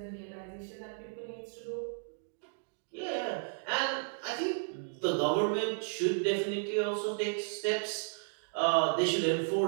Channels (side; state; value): left; silent; digital silence